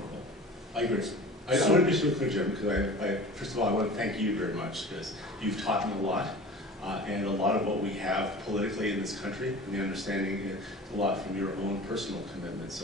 I agree. I want to be so clear, Jim, because first of all, I want to thank you very much, because you've taught me a lot, and a lot of what we have politically in this country, and the understanding is a lot from your own personal commitment.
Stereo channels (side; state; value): both; normal; correlation 0.39